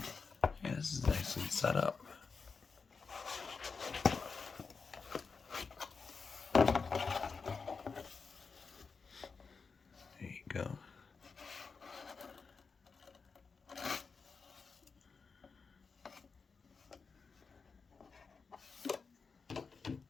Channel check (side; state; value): right; quieter; 5.0 dB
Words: Yeah, this is nicely set up. There you go.